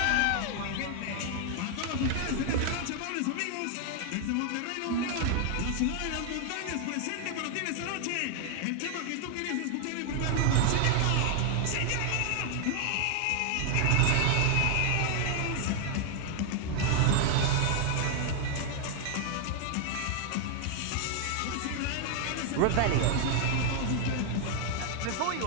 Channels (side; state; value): both; different; correlation 0.00